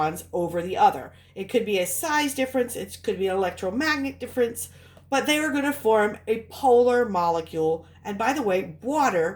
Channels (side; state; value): both; identical; correlation 1.00